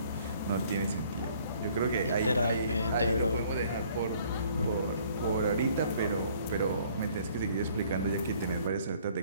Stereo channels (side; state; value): both; inverted; correlation -0.59